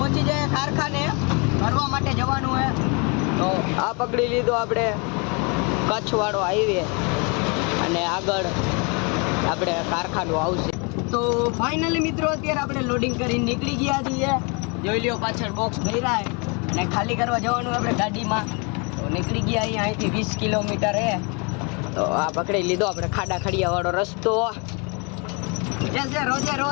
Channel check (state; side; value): quieter; right; 32.2 dB